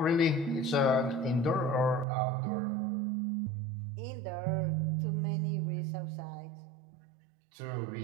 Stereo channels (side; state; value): left; drops out; at 2.1 s